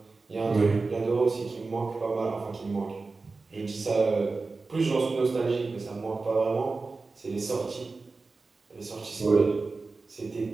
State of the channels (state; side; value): quieter; left; 3.9 dB